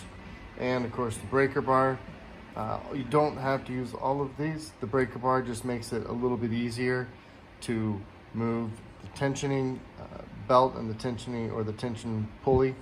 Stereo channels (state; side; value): identical; both; correlation 1.00